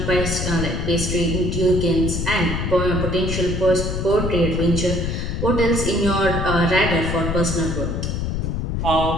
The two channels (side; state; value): left; noise; rumble, 2 dB below the sound